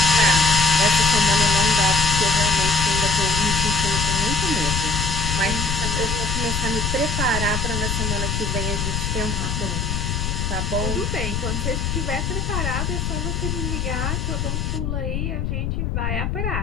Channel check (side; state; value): left; noise; rumble, 1 dB below the sound